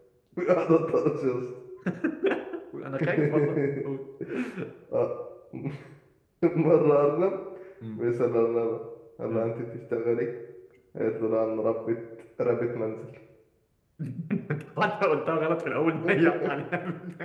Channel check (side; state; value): both; identical; correlation 1.00